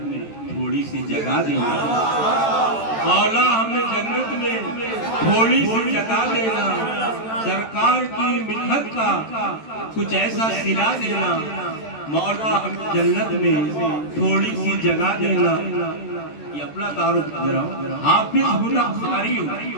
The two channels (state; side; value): late; right; 13 ms